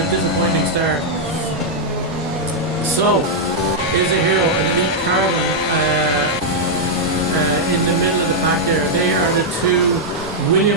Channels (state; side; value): noise; right; hum, 28 dB below the sound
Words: disappointing start. So, is a hero, an elite carbon in the middle of the pack there. They are the two